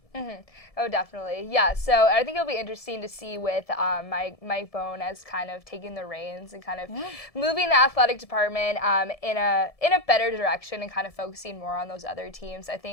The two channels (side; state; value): right; late; 1.7 ms